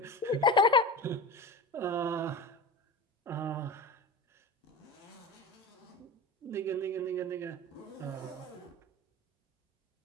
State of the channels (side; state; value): both; normal; correlation 0.29